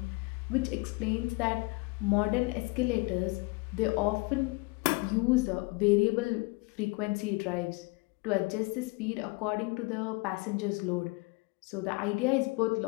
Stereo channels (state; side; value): quieter; right; 26.6 dB